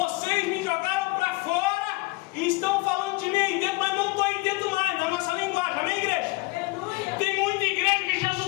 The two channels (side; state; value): right; quieter; 23.8 dB